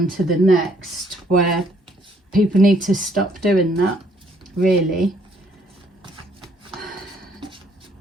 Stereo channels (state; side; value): normal; both; correlation 0.66